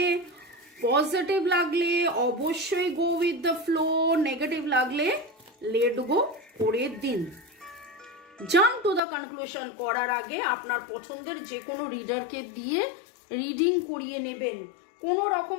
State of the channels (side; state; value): right; drops out; at 9.0 s